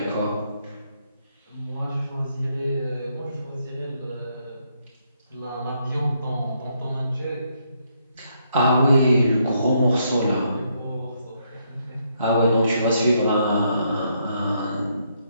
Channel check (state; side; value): inverted; both; correlation -0.75